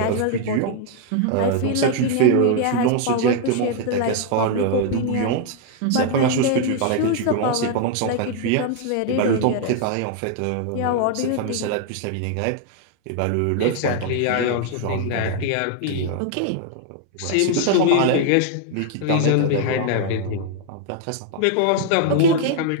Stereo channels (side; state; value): both; different; correlation 0.00